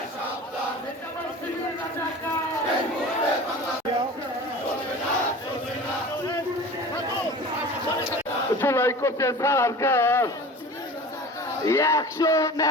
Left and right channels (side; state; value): both; normal; correlation 0.38